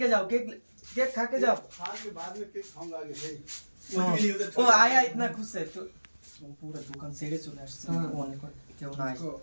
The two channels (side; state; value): both; inverted; correlation -1.00